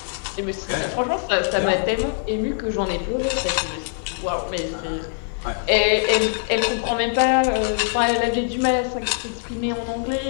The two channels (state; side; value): silent; right; digital silence